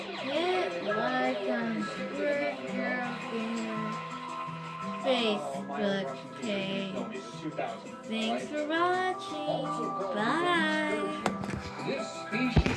hit like on Work Gamer Facebook page. No, it's 2000. Thanks for watching. Also called the Bye. This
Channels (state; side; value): identical; both; correlation 1.00